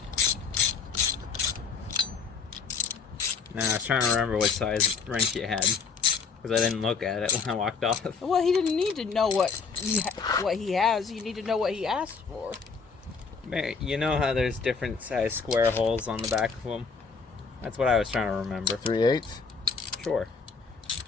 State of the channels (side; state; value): right; quieter; 5.3 dB